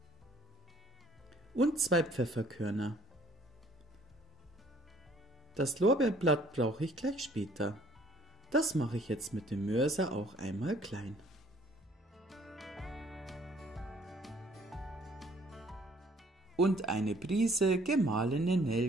und 2 Pfefferkörner. Das Lorbeerblatt brauche ich gleich später. Das mache ich jetzt mit dem Mörser auch einmal klein. Und eine Prise gemahlene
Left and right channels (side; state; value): both; normal; correlation 0.59